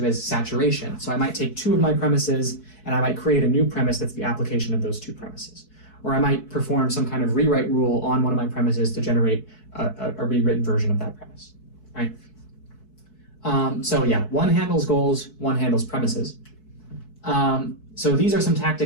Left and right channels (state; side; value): late; right; 4.6 ms